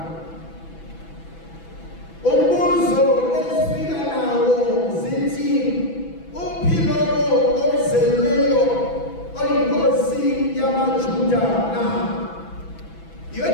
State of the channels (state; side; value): late; right; 6.0 ms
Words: Umbuzo ezifika nawo zithi uphilo ozelweyo oyinkosi yamaJuda na.